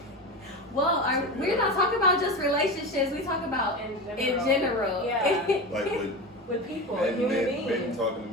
Well, we're not talking about just relationships. We talk about in general. Yeah. Like with people, men beings. talking to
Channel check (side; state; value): both; normal; correlation 0.24